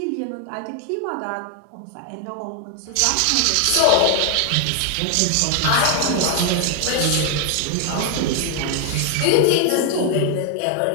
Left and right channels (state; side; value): different; both; correlation 0.00